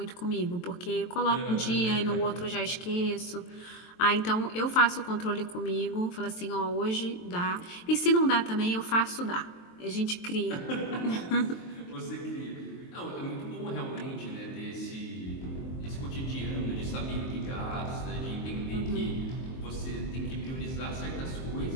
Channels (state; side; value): late; right; 23 ms